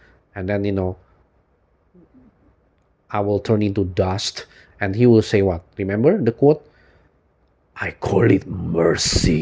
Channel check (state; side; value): identical; both; correlation 1.00